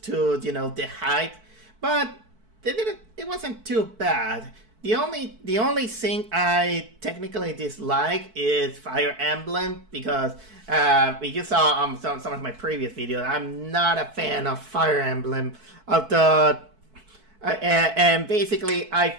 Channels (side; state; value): left; late; 4.6 ms